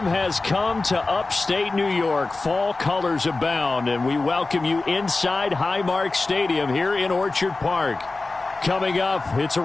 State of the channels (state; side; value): quieter; right; 3.4 dB